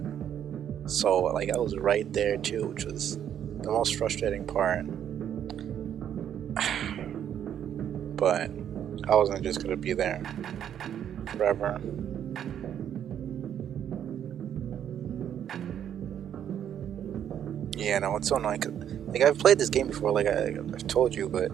So like I was right there too, which was the most frustrating part. But I wasn't just gonna be there forever. Yeah, no, it's so annoying. 'Cause, like, I've played this game before, like I've told you, but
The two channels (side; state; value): left; quieter; 9.6 dB